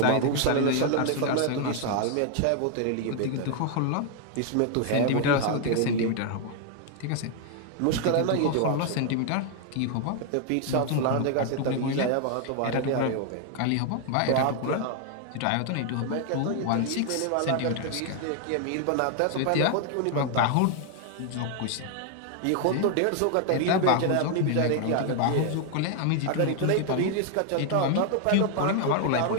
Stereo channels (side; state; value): both; different; correlation 0.00